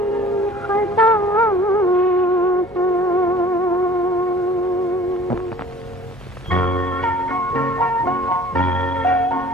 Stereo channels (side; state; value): both; normal; correlation 0.49